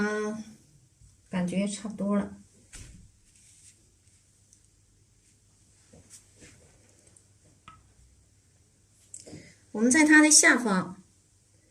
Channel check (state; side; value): identical; both; correlation 1.00